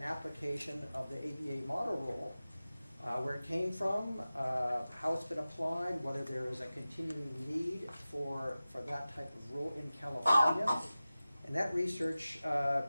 application of the ABA model rule, where it came from, how it's been applied, whether there is a continuing need for that type of rule in California. And that research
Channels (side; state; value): both; inverted; correlation -0.96